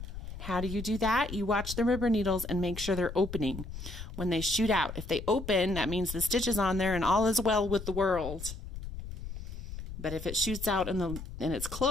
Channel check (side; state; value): left; noise; rumble, 9 dB below the sound